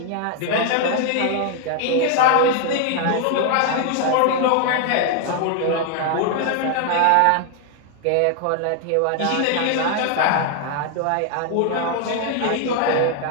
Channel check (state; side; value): different; both; correlation 0.00